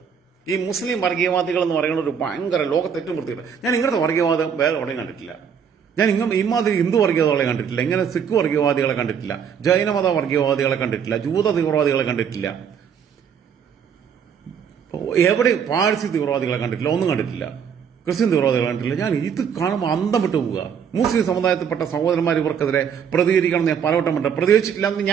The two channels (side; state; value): left; quieter; 7.5 dB